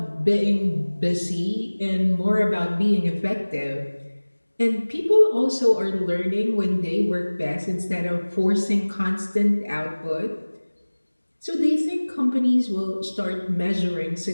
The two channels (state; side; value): inverted; both; correlation -1.00